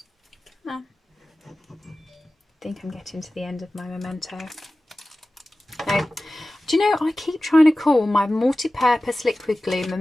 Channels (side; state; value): both; normal; correlation 0.96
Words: Come on. I think I'm getting to the end of my memento. Now, do you know, I keep trying to call my multi-purpose liquid glue